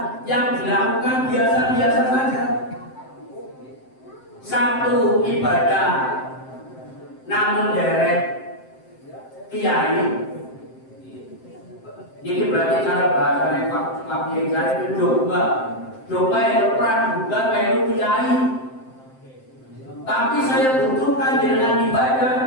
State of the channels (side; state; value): right; late; 7.7 ms